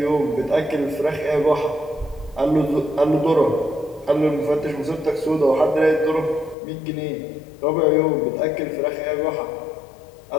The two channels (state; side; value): drops out; right; at 6.6 s